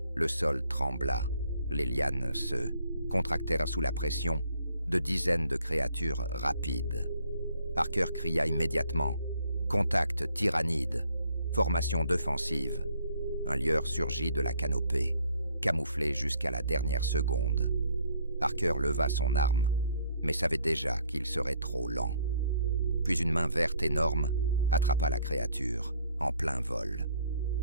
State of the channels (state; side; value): inverted; both; correlation -0.64